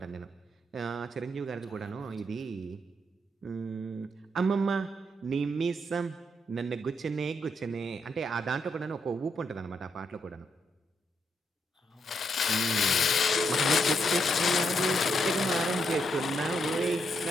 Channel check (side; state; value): both; normal; correlation 0.78